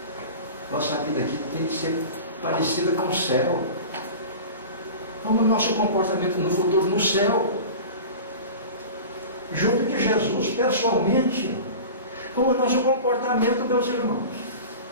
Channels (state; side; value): inverted; both; correlation -0.34